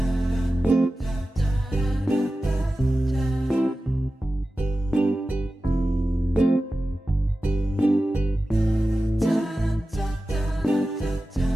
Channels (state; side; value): normal; both; correlation 0.94